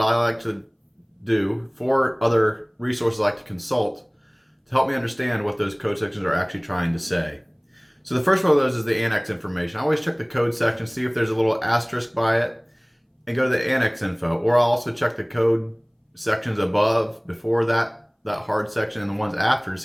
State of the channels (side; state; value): both; identical; correlation 1.00